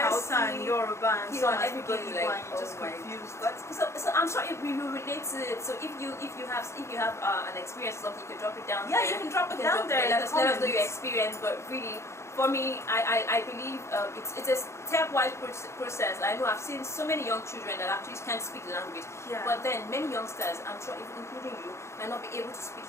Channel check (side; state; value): right; late; 0.13 ms